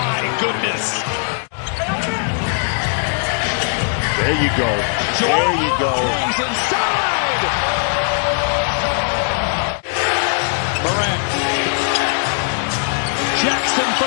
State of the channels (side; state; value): right; silent; 58 dB below the other